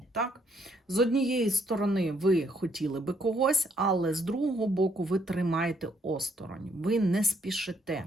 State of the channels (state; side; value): normal; both; correlation 0.70